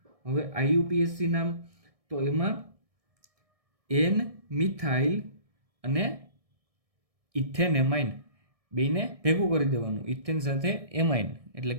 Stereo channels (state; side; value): late; left; 1.6 ms